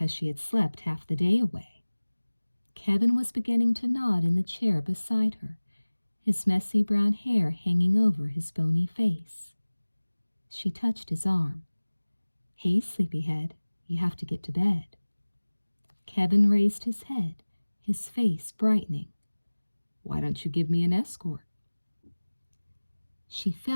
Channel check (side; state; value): both; inverted; correlation -1.00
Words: she had slept half the day away. Kevin was beginning to nod in the chair beside her, his messy brown hair hanging over his bony face. She touched his arm. Hey, sleepyhead, you have to get to bed. Kevin raised his head, his face brightening. Why don't you give me an escort? She